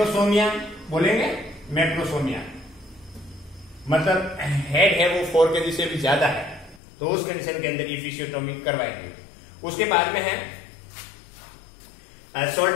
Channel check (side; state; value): right; drops out; at 6.8 s